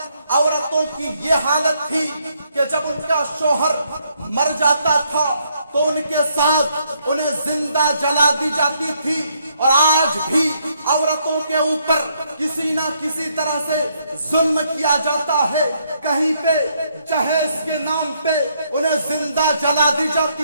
عورتوں کی یہ حالت تھی کہ جب ان کا شوہر مر جاتا تھا تو ان کے ساتھ انہیں زندہ جلا دی جاتی تھی. اور آج بھی عورتوں کے اوپر کسی نہ کسی طرح سے ظلم کیا جاتا ہے. کہیں پہ جہیز کے نام پہ انہیں زندہ جلا دی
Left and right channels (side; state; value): both; inverted; correlation -0.72